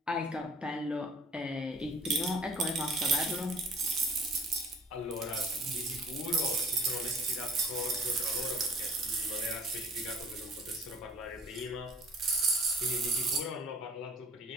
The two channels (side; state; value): both; normal; correlation 0.51